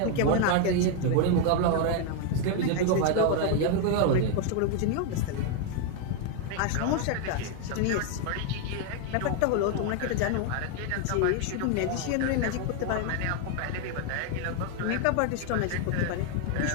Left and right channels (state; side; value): different; both; correlation 0.01